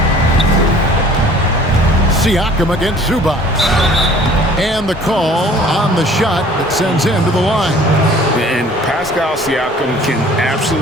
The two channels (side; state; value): both; normal; correlation 0.51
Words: Siakam against Zubac. And the call on the shot that sends him to the line. And Pascal Siakam can